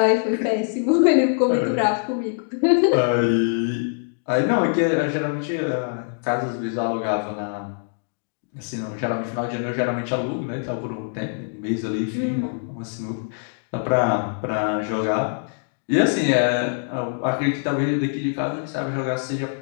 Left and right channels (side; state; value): right; silent; digital silence